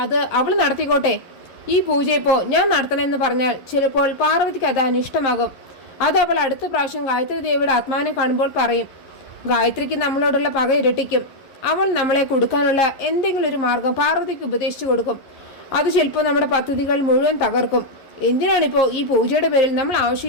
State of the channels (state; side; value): late; right; 11 ms